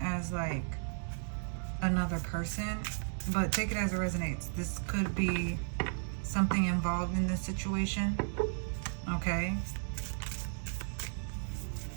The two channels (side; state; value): left; silent; digital silence